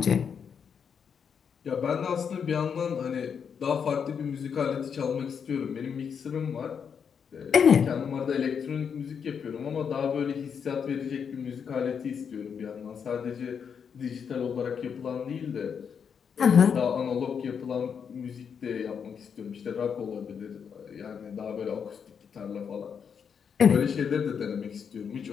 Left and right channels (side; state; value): right; quieter; 7.0 dB